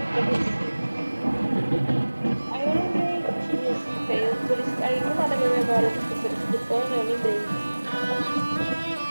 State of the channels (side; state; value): both; inverted; correlation -1.00